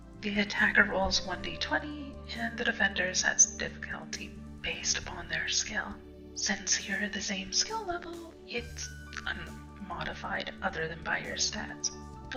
The attacker rolls 1d20, and the defender sets difficulty based upon their skill. Since you're the same skill level, it's unmodified other than by your stats.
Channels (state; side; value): identical; both; correlation 1.00